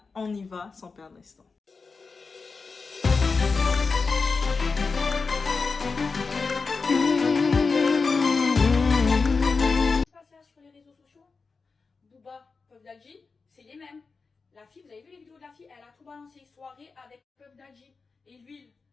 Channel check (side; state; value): right; quieter; 4.5 dB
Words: on y va sans perdre l'instant. Sur les réseaux sociaux, Booba, Puff Daddy, c'est les mêmes. La fille, vous avez vu les vidéos de la fille, elle a tout balancé, soirée avec Puff Daddy et l'huile,